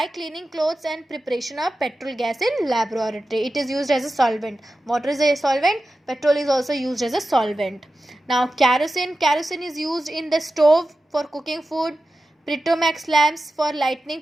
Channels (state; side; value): normal; both; correlation 0.93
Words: cleaning clothes and preparation of petrol gas in laboratory. It is used as a solvent. Water is a solvent, petrol is also used as a solvent. Now kerosene is used in the stove for cooking food. Petromax lamps for lighting